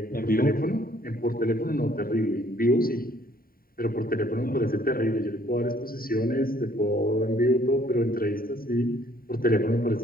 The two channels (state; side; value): late; right; 0.43 ms